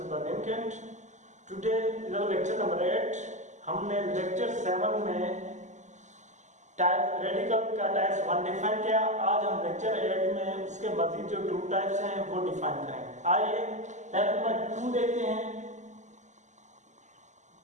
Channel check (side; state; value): left; late; 0.34 ms